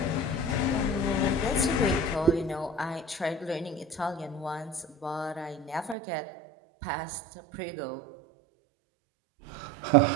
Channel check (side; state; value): left; drops out; at 6.0 s